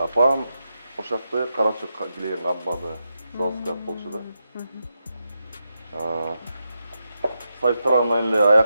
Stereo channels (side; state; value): both; inverted; correlation -0.87